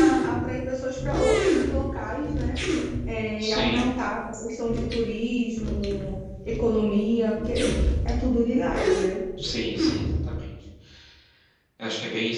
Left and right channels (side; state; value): both; identical; correlation 1.00